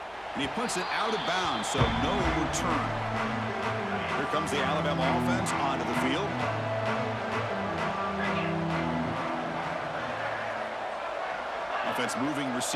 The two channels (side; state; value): both; identical; correlation 1.00